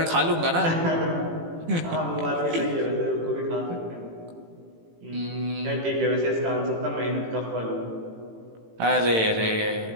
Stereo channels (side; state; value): left; late; 18 ms